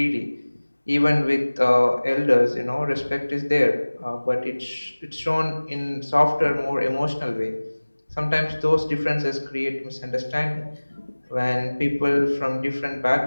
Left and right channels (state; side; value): inverted; both; correlation -1.00